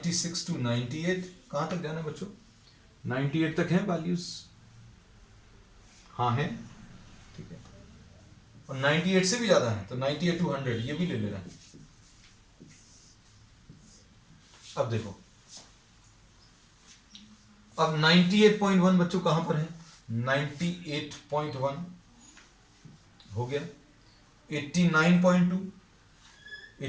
to 98। कहां तक जाना है बच्चों, 98 तक है वैल्यूज, हाँ है, ठीक है। और 98 से भी ज्यादा है तो 98 to 100 ये भी ले लेना है। अब देखो, अब 98.1 बच्चों कहां पर है, 98.1 हो गया। 89.2,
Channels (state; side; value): identical; both; correlation 1.00